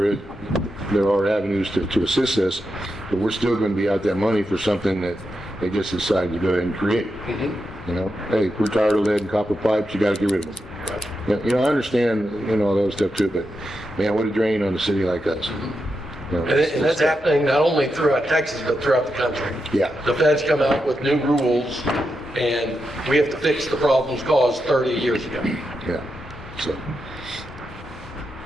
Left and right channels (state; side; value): normal; both; correlation 0.86